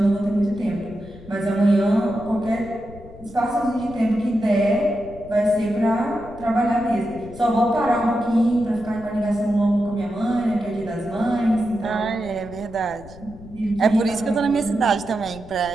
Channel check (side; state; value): left; noise; rumble, 18 dB below the sound